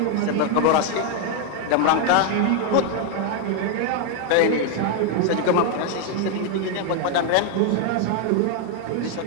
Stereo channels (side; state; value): both; different; correlation 0.01